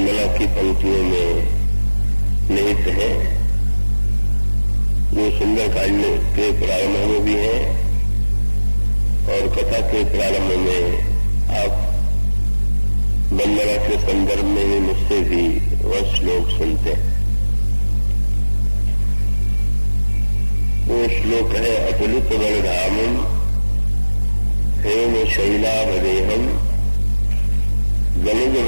की पंक्तियों में निहित है, जो सुंदरकांड के प्रारंभ में भी है और कथा के प्रारंभ में आप वंदना के संदर्भ में भी मुझसे भी वह श्लोक सुनते हैं। वो श्लोक है, अतुलित बलधामम हेम शैलावदेहम गनुज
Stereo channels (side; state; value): both; inverted; correlation -1.00